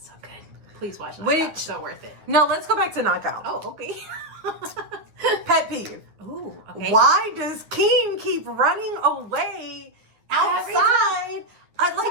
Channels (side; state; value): left; late; 9.6 ms